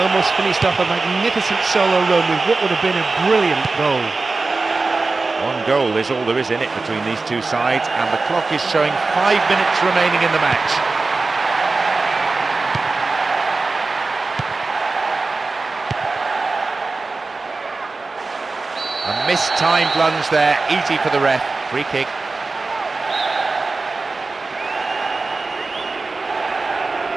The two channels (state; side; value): quieter; left; 3.7 dB